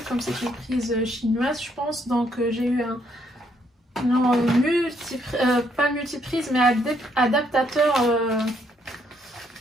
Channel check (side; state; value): both; normal; correlation 0.71